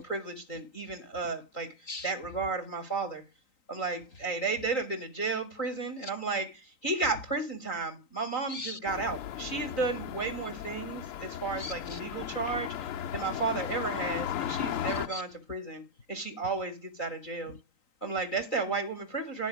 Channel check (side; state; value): right; late; 3.9 ms